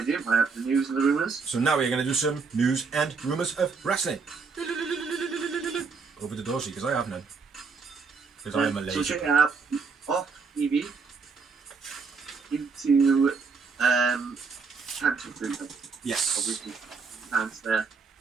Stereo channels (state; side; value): quieter; left; 5.0 dB